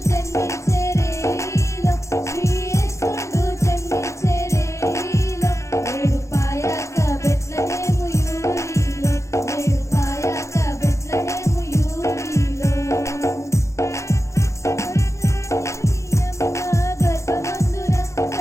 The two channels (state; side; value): late; right; 0.14 ms